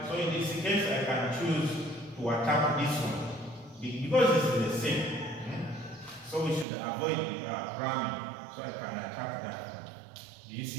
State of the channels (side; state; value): left; drops out; at 6.7 s